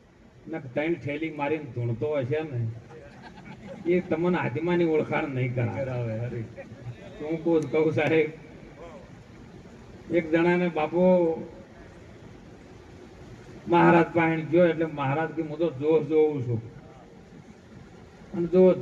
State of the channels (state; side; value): identical; both; correlation 1.00